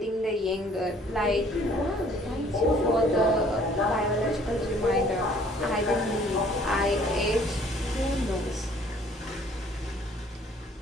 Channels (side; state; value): both; normal; correlation 0.57